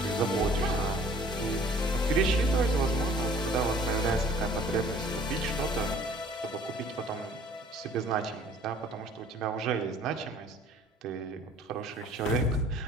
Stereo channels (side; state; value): both; normal; correlation 0.53